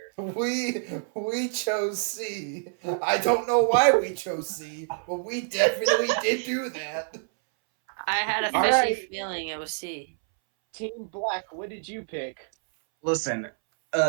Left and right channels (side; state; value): left; silent; 60 dB below the other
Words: answer? We chose C. I don't know why we chose C, but we definitely did do that. I had a All fishy right. feeling it was C. Team Black, what did you pick? Listen,